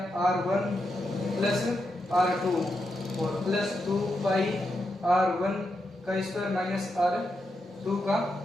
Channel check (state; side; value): normal; both; correlation 0.85